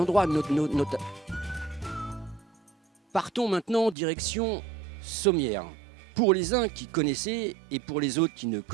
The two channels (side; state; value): left; drops out; at 4.0 s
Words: Partons maintenant direction Sommières. Pour les uns qui connaissaient et pour les autres qui ne